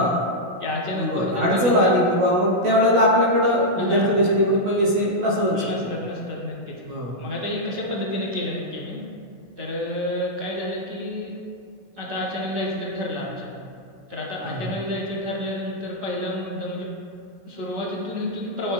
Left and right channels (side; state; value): left; late; 16 ms